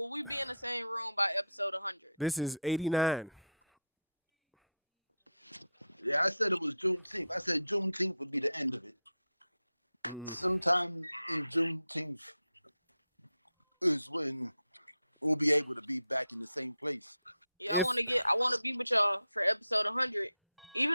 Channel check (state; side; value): inverted; both; correlation -0.77